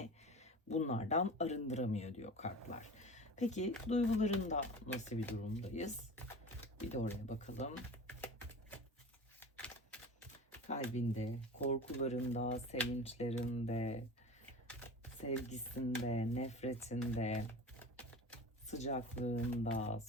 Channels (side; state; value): both; normal; correlation 0.34